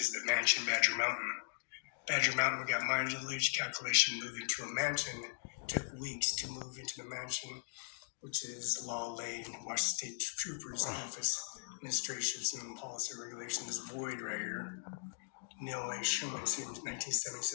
the mansion Badger Mountain. Badger Mountain, we got mileage calculation moving to a mansion. Took weeks to move into the mansion, which is Law Lane, Washington State Troopers Office, Administrations and Policy Regulation. This void right here. Neil A. Schuman, since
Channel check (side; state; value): right; silent; digital silence